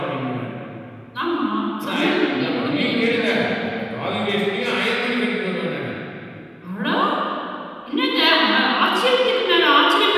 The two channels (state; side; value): identical; both; correlation 1.00